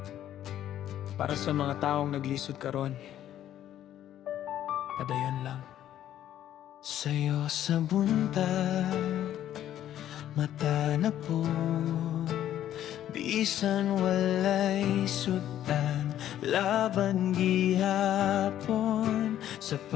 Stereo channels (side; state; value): right; quieter; 11.7 dB